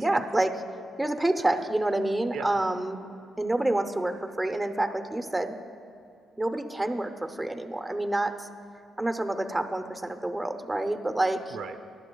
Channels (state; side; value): normal; both; correlation 0.96